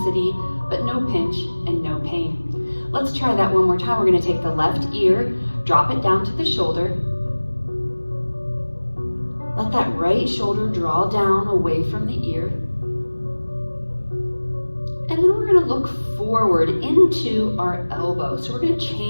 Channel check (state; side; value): inverted; both; correlation -1.00